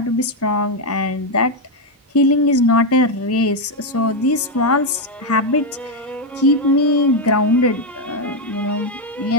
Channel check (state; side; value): normal; both; correlation 0.04